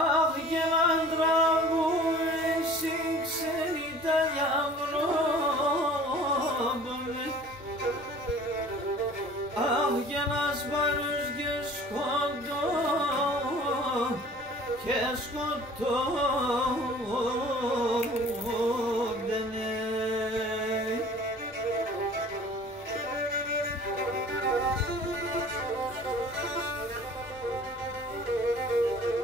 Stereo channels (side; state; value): both; normal; correlation 0.47